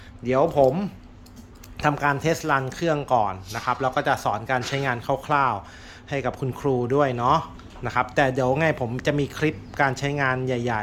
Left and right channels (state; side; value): identical; both; correlation 1.00